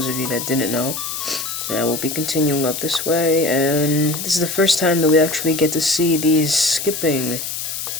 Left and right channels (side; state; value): left; noise; hiss, 5 dB below the sound